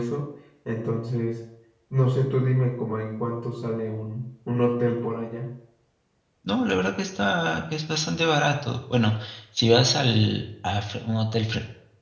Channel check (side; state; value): both; identical; correlation 1.00